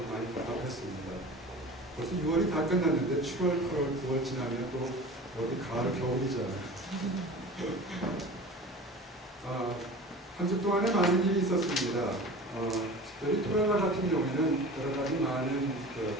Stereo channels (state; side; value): normal; both; correlation 0.38